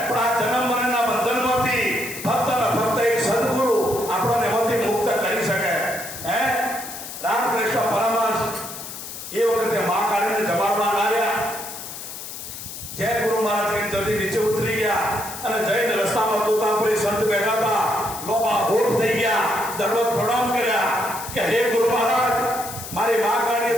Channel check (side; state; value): left; noise; hiss, 10 dB below the sound